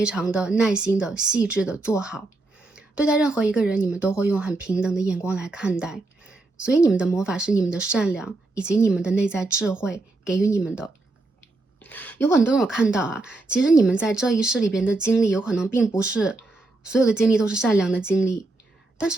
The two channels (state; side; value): quieter; left; 3.1 dB